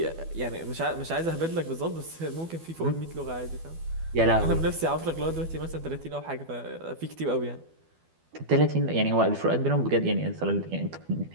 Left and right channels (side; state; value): left; late; 12 ms